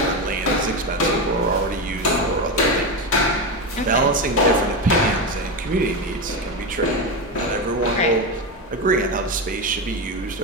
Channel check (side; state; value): both; normal; correlation 0.15